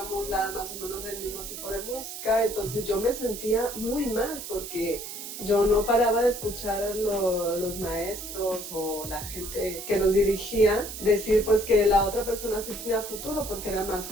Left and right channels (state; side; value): noise; right; hiss, 9 dB below the sound